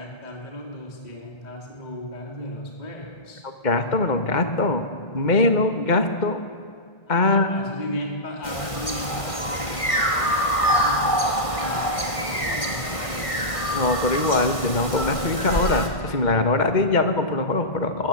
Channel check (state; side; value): late; right; 1.5 ms